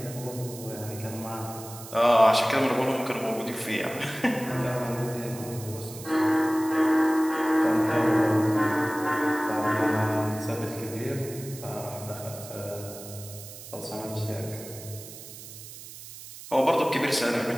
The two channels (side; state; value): right; noise; hiss, 14 dB below the sound